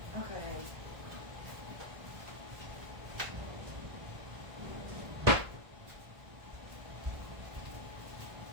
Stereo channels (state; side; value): late; left; 1.4 ms